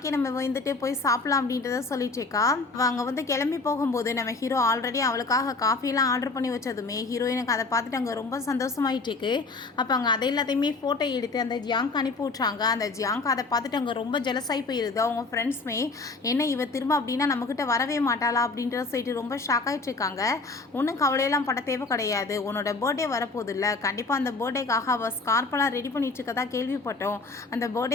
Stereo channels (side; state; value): right; quieter; 3.8 dB